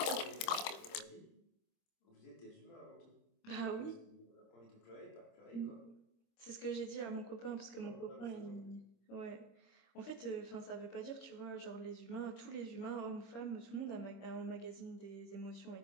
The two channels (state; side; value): late; right; 26 ms